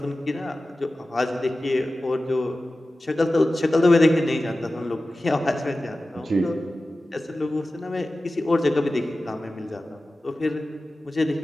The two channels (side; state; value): both; normal; correlation 0.95